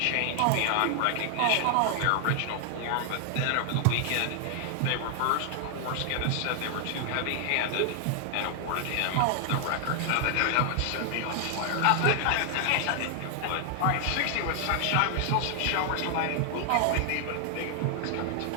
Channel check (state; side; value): different; both; correlation 0.00